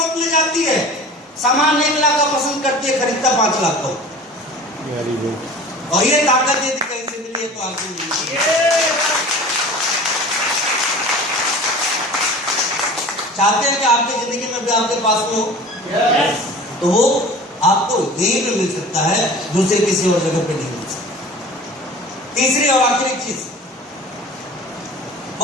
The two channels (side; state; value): both; normal; correlation 0.40